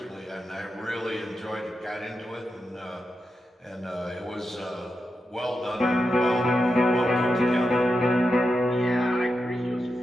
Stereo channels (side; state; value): both; normal; correlation 0.88